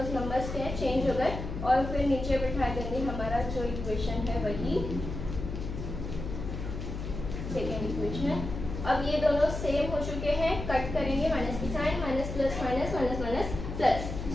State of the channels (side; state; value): left; noise; hum, 6 dB below the sound